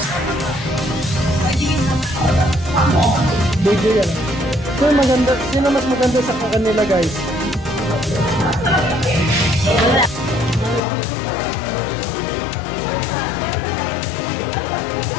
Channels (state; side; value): drops out; right; at 10.8 s